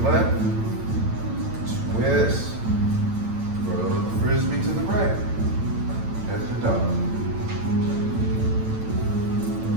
left. Twist. Throw the frisbee to the right. Head to dog.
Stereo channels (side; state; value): left; late; 9.0 ms